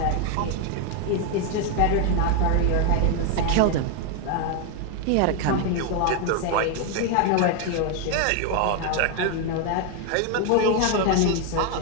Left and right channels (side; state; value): both; different; correlation 0.01